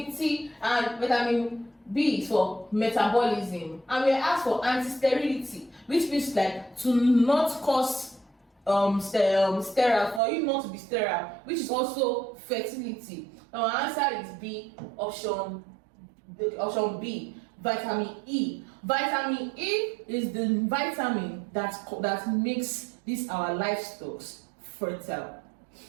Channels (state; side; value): drops out; left; at 10.2 s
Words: and vitamin B is for metabolism. And we are asked for anti-sterility, which means like to not cause sterile, for you not to be sterile, which is also fertility. Now our answer is B, option B, vitamin E. Vitamin E is the vitamin that makes these our livestock fertile.